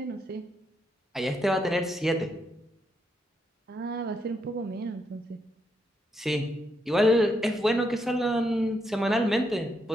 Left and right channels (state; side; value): normal; both; correlation 0.79